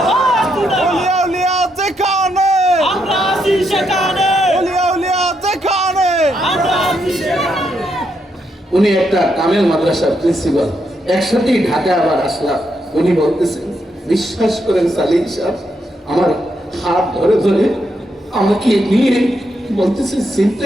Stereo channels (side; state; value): both; normal; correlation 0.79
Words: ওলিয়া উলিয়া যেখানে, আমরা আছি সেখানে, ওলিয়া উলিয়া যেখানে। উনি একটা কামেল মাদ্রাসার প্রিন্সিপাল, একসাথেই ঢাকা আবার আসলাম। উনি বলতেছেন, বিশ্বাস করেন সালিম সাহেব, আমার হাত ধরে ধরে আমাকে নিয়ে বলতেছে,